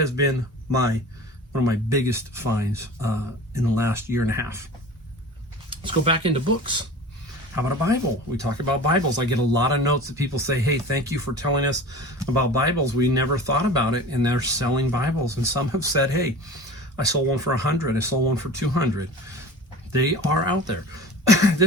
been one of my biggest finds in the last year and a half. Let's go back into books. How about a Bible? We talk about Bibles. I get a lot of notes that people say, hey, thank you for telling us about Bibles. We never thought about it, and they're selling Bibles. And some have said, hey, I sold one for $100. I sold one for $200. They are out there.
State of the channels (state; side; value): normal; both; correlation 0.38